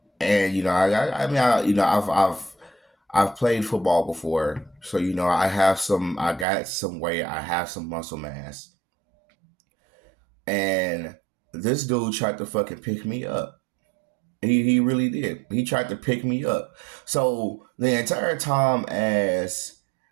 And I mean, I've played football before, so I got some weight, I have some muscle mass, and this dude tried to fucking pick me up. He really did. He tried to pick me up. So the entire time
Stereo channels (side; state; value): left; drops out; at 6.5 s